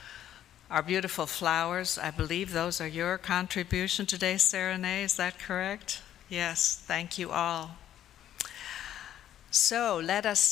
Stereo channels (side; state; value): right; quieter; 11.3 dB